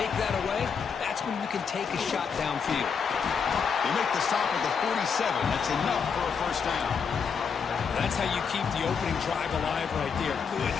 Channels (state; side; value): quieter; right; 6.2 dB